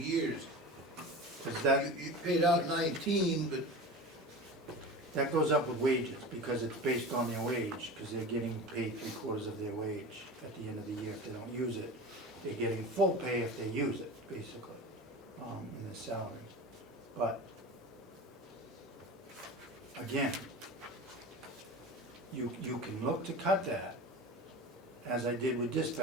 Because that, You paid out 19, but that goes up with wages, because it's based on their wage, because they're getting paid 3/4 of their wage at the end of the year if they don't use it. They're getting full pay if they use it, basically, in their salary. But, again, you can look to cut that. As I did with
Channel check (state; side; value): normal; both; correlation 0.32